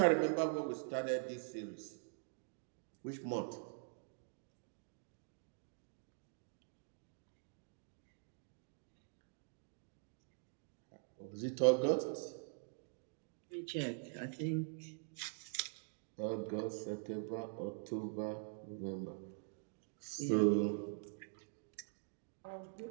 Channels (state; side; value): silent; left; digital silence